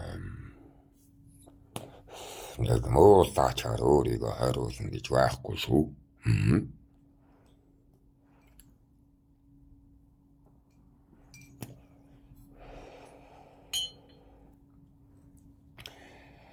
Нэг муулаачаар өөрийгөө хариулна гэж байхгүй шүү.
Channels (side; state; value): both; identical; correlation 1.00